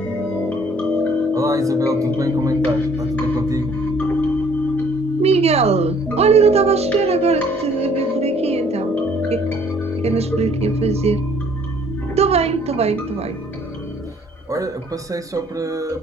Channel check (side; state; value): both; normal; correlation 0.60